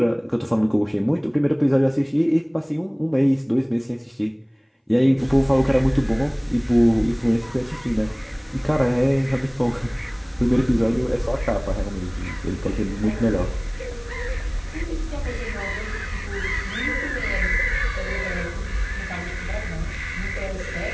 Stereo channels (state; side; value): identical; both; correlation 1.00